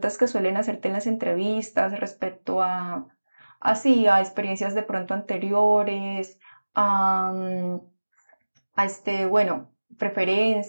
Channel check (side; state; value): both; inverted; correlation -1.00